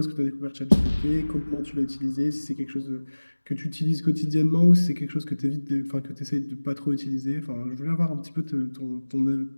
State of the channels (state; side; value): inverted; both; correlation -1.00